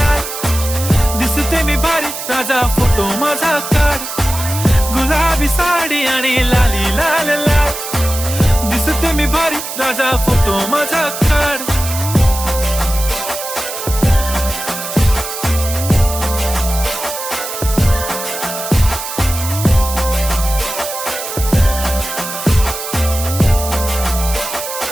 दिसते मी भारी राजा फोटो माझा काढ. गुलाबी साडी आणि लाली लाल लाल, दिसते मी भारी राजा फोटो माझा काढ.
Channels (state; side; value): noise; right; hiss, 7 dB below the sound